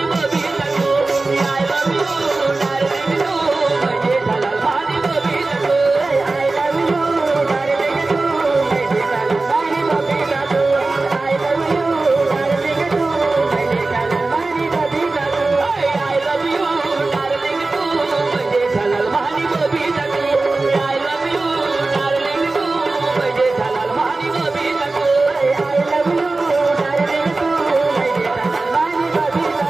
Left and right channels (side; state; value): left; quieter; 3.4 dB